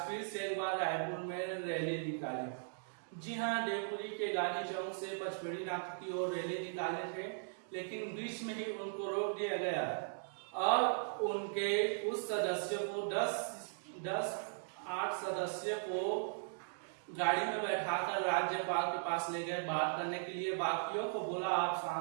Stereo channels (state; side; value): silent; left; digital silence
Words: फिर से एक बार रायपुर में रैली निकाले। जी हाँ, देवपुरी के गांधी चौक से पचपेड़ी नाका की ओर रैली निकाले थे, लेकिन बीच में ही उनको रोक दिया गया और उनके कुछ सदस्यों को 8 सदस्यों को गाड़ी में बैठाकर राज्यपाल के पास ले गए बात करने के लिए। बाकियों को बोला आप